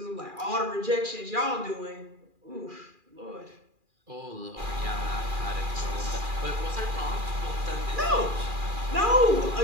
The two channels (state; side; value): late; left; 2.4 ms